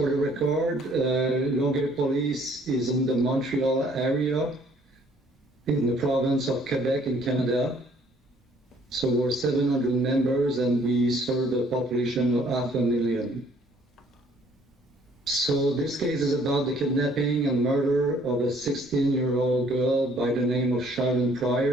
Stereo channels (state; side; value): normal; both; correlation 0.61